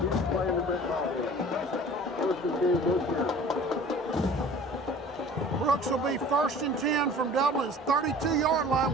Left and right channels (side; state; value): both; normal; correlation 0.45